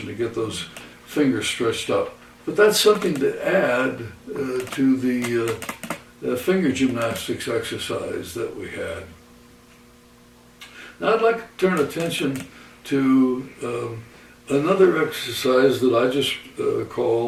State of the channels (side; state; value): both; identical; correlation 1.00